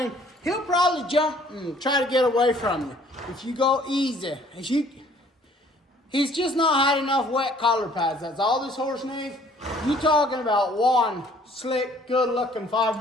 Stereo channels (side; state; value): both; normal; correlation 0.58